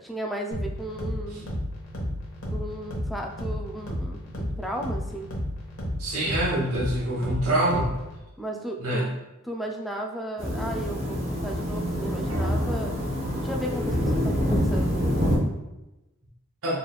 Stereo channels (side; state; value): both; normal; correlation 0.64